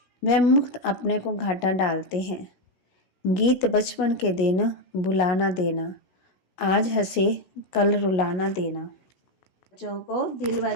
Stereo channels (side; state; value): right; late; 16 ms